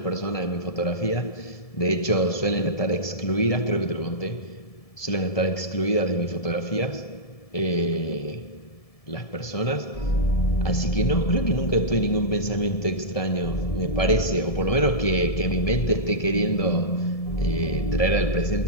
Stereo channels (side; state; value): right; late; 1.7 ms